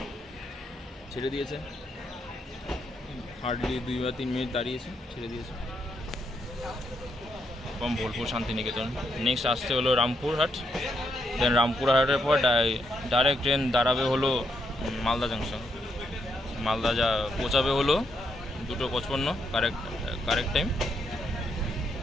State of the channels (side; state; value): both; normal; correlation 0.78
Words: ছেড়ে দিয়েছে, হার্ডলি 2 বা 3 মিনিট দাঁড়িয়েছে, ছেড়ে দিয়েছে। এবং বোলপুর শান্তিনিকেতন। নেক্সট আসতে হলো রামপুরহাট, দেন রামপুরহাটের পর ডাইরেক্ট ট্রেন দাঁড়াবে হলো মালদা জাংশন। মালদা যা পৌঁছাবে হলো 2:55, correct time.